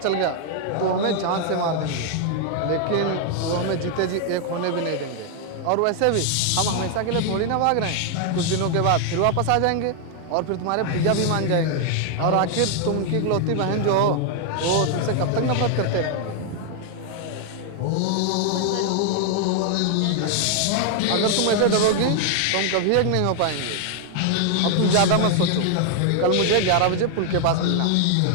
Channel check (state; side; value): different; both; correlation 0.00